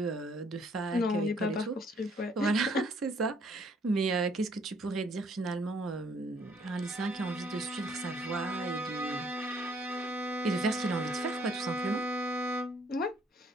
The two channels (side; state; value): both; normal; correlation 0.64